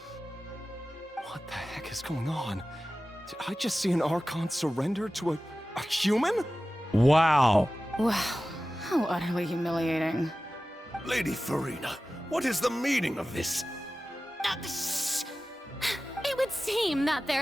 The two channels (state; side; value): normal; both; correlation 0.95